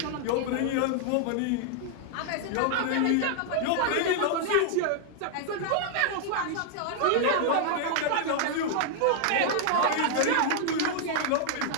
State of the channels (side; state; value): both; different; correlation 0.00